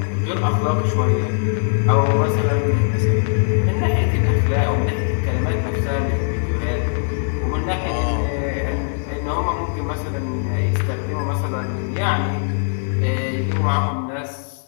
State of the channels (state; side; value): silent; right; digital silence